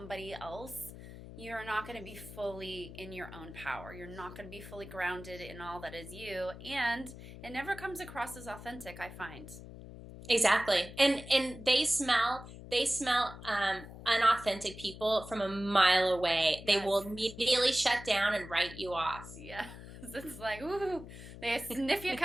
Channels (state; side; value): noise; left; hum, 14 dB below the sound